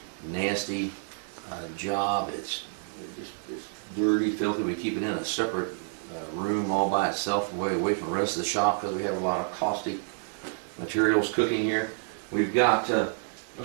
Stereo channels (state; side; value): silent; left; 55 dB below the other